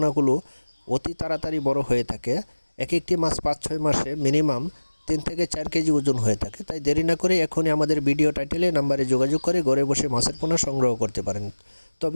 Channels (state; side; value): inverted; both; correlation -1.00